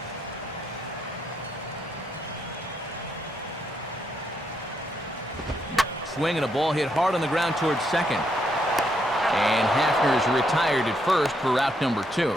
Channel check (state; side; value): normal; both; correlation 0.77